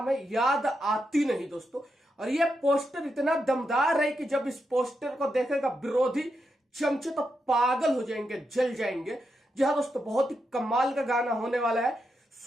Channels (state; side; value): normal; both; correlation 0.85